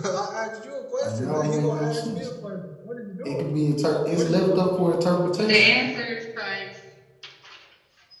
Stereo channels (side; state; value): both; identical; correlation 1.00